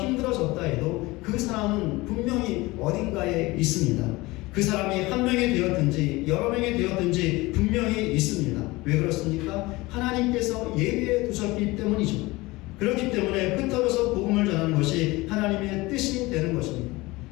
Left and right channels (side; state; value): right; quieter; 21.4 dB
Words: 해도 그 사람은 분명히 어딘가에 있습니다. 그 사람이 한 명이 되었든지 여러 명이 되었든지 분명히 있습니다. 왜 그렇습니까? 하나님께서 예비해 두셨기 때문이죠. 그렇기 때문에 흩어져서 복음을 전하는 것이 하나님의 뜻이 되는 것입니다.